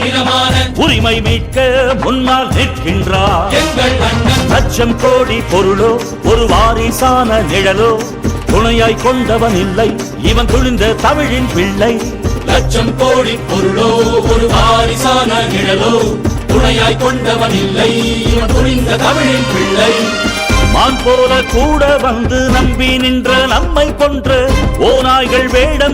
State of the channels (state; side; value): identical; both; correlation 1.00